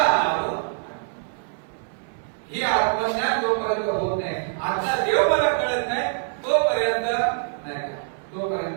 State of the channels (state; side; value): silent; left; 59 dB below the other